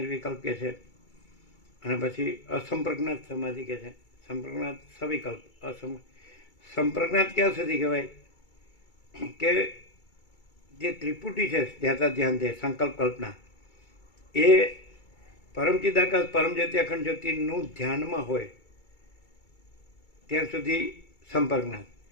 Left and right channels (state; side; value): late; right; 2.3 ms